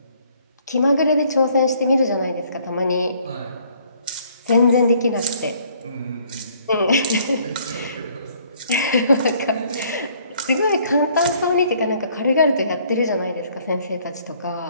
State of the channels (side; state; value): both; inverted; correlation -0.62